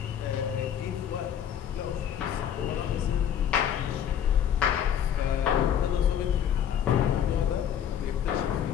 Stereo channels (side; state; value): right; quieter; 9.3 dB